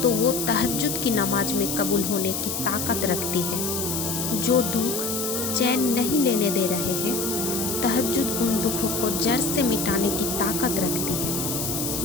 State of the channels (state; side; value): noise; left; hiss, 3 dB below the sound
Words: तो वो तहज्जुद की नमाज में कबूल होने की ताकत रखती है। जो दुख चैन नहीं लेने दे रहे हैं, तहज्जुद उन दुखों को जड़ से मिटाने की ताकत रखती